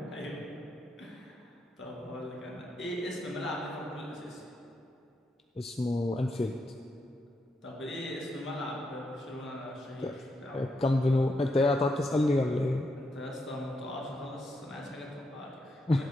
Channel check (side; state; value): both; normal; correlation 0.81